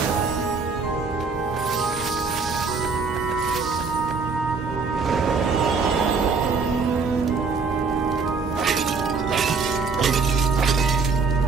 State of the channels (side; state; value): left; quieter; 4.6 dB